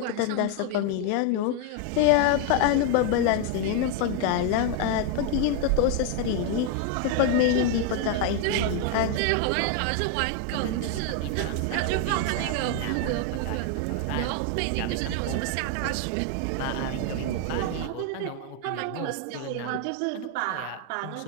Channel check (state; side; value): different; both; correlation 0.01